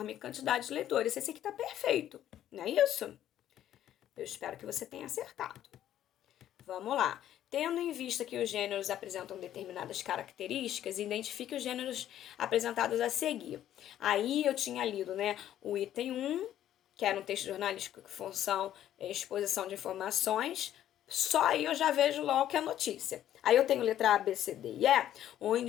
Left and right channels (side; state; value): right; quieter; 11.7 dB